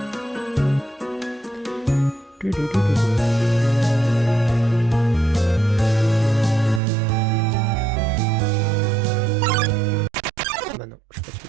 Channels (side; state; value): left; drops out; at 6.8 s